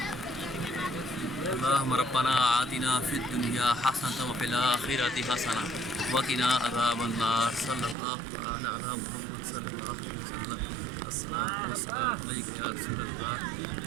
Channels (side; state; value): left; drops out; at 8.0 s